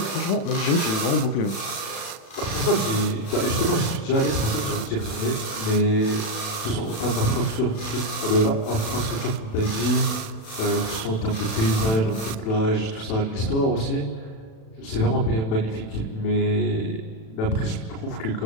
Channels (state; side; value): late; right; 36 ms